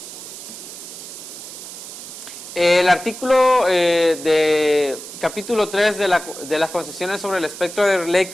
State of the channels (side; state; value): right; noise; hiss, 12 dB below the sound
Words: El artículo de capítulo 3 de las concesiones sobre el espectro